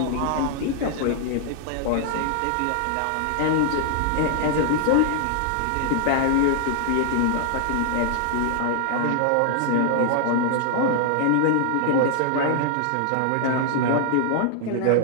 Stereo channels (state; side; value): different; both; correlation -0.01